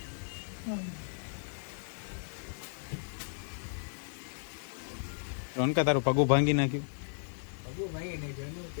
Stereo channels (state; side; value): silent; right; digital silence